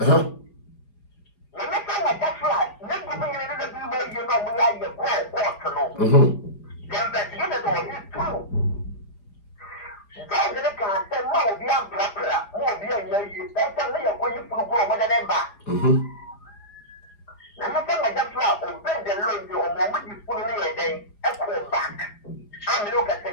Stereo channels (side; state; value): right; late; 4.9 ms